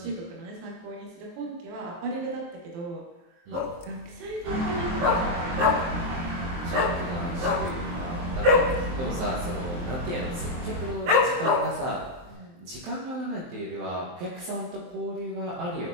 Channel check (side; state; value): left; late; 23 ms